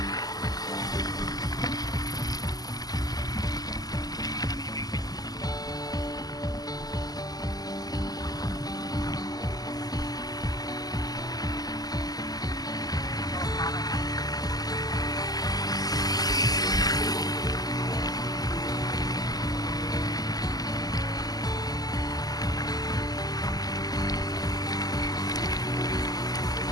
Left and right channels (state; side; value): late; right; 0.18 ms